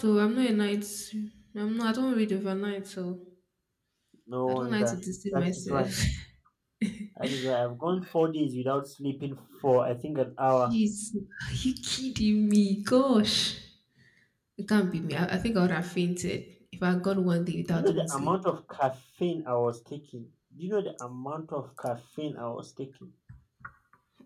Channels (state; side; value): identical; both; correlation 1.00